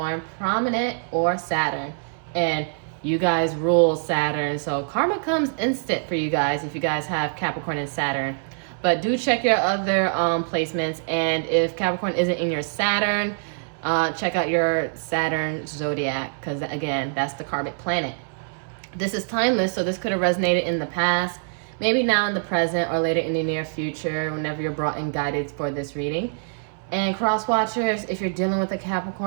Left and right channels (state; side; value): silent; left; 62 dB below the other